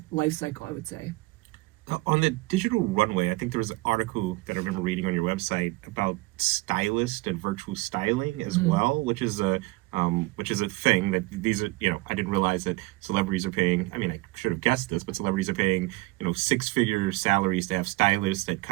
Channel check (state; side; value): quieter; left; 22.3 dB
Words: life cycle, I would say. On the Digital Runway, I think there was an article that I remember reading on your website about stylist and virtual styling as Mhm. well, which is a thing that these are, I didn't realize that celebrities are paying. I mean, I should have guessed this, but celebrities are paying, six-figure salaries to have stylists that